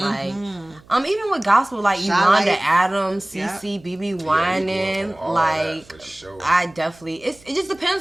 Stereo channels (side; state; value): right; noise; hum, 26 dB below the sound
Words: even with gospel, like Charlotte. Yolanda Adams, Yep. CC, BB you grew Wining, up on all like that for sure. I definitely it just